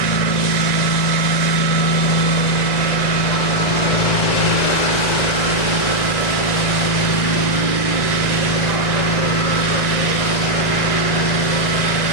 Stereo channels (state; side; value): late; right; 2.0 ms